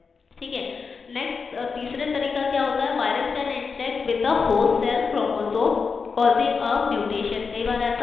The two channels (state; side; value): quieter; right; 5.2 dB